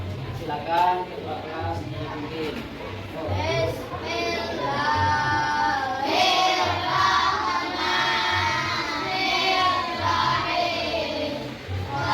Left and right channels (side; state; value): both; identical; correlation 1.00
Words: Silakan ketua kelas dipimpin.